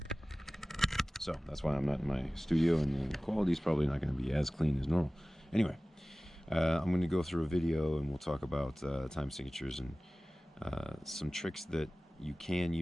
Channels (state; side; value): normal; both; correlation 0.98